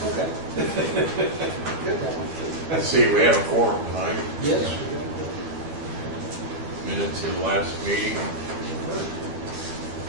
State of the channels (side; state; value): left; late; 12 ms